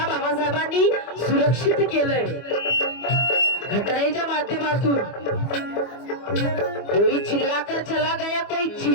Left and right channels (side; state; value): right; late; 25 ms